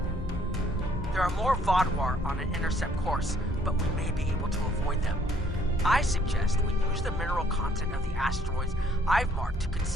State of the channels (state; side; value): normal; both; correlation 0.64